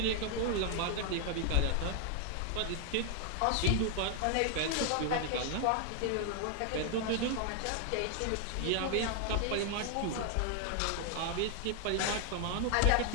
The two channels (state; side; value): different; both; correlation 0.00